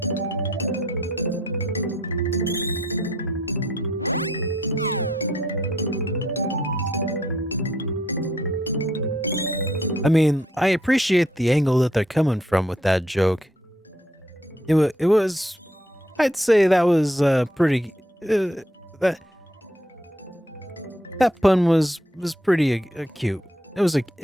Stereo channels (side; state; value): both; normal; correlation 0.69